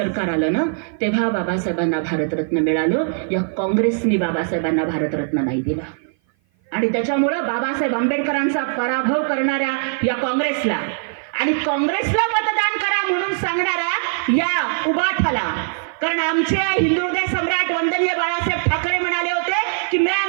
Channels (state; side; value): silent; left; 55 dB below the other